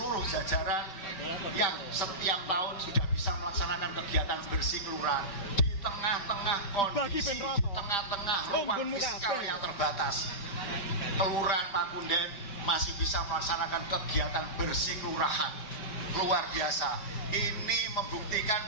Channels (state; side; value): late; right; 5.3 ms